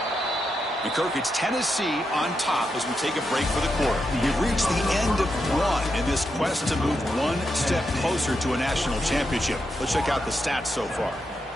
Kirk, it's Tennessee on top as we take a break for the quarter. You've reached the end of one in this quest to move one step closer to a national championship. Let's check out the stats so far.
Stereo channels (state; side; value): normal; both; correlation 0.84